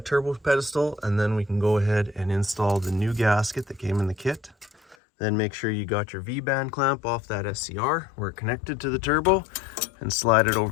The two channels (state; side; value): drops out; right; at 5.0 s